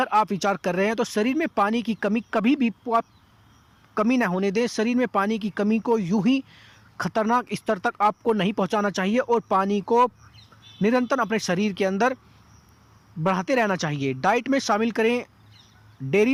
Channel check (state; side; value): identical; both; correlation 1.00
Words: आप विचार कर रहे हैं तो शरीर में पानी की कमी कभी भी आप कमी ना होने दें। शरीर में पानी की कमी को यूं ही खतरनाक स्तर तक आपको नहीं पहुंचाना चाहिए और पानी को निरंतर अपने शरीर के अंदर बढ़ाते रहना चाहिए। डाइट में शामिल करें